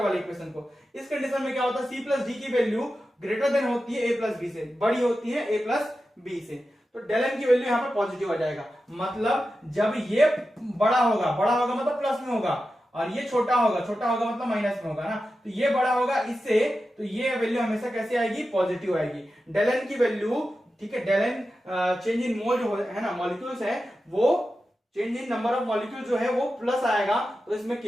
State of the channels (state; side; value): normal; both; correlation 0.92